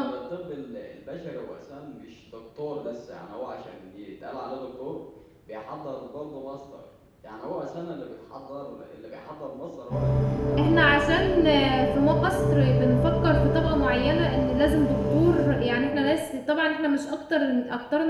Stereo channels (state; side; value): identical; both; correlation 1.00